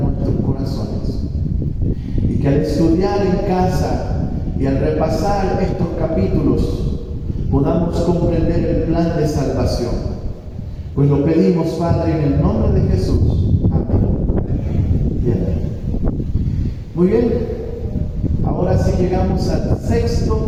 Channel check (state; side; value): identical; both; correlation 1.00